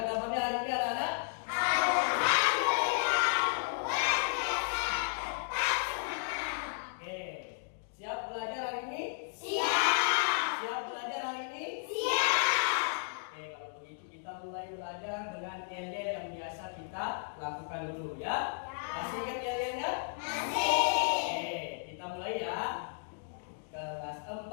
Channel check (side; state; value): right; silent; digital silence